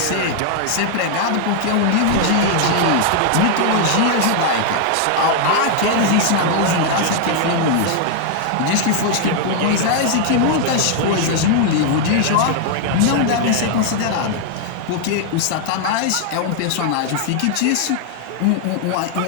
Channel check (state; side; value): different; both; correlation 0.00